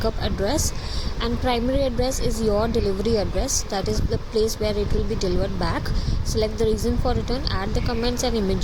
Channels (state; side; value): identical; both; correlation 1.00